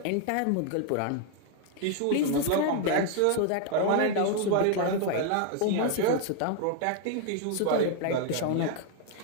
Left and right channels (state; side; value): different; both; correlation 0.00